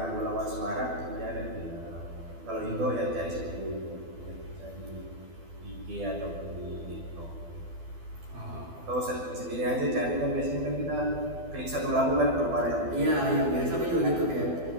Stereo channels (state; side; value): late; left; 12 ms